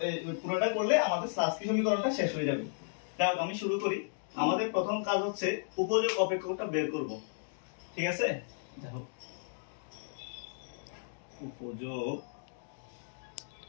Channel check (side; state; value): right; silent; digital silence